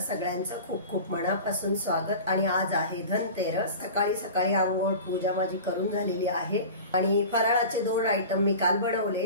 सगळ्यांचं खूप खूप मनापासून स्वागत। आणि आज आहे धनतेरस। सकाळी सकाळी आंघोळ पूजा माझी करून झालेली आहे आणि फराळाचे 2 आयटम मी काल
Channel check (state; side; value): inverted; both; correlation -0.35